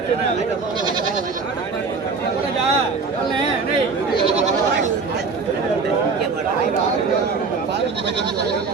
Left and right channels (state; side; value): quieter; left; 4.6 dB